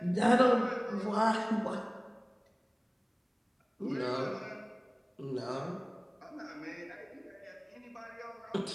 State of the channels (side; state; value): both; identical; correlation 1.00